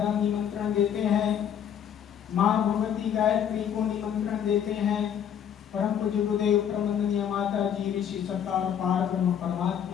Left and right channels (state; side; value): quieter; right; 8.8 dB